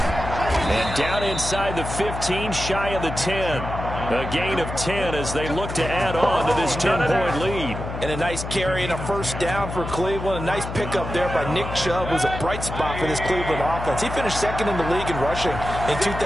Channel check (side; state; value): left; noise; hum, 7 dB below the sound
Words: And down inside the 15, shy of the 10. A gain of 10 as they look to add on to this 10-point lead. And a nice carry and a first down for Cleveland. A nice pickup there by Nick Chubb, who's a bright spot for this Cleveland offense. He finished second in the league in rushing in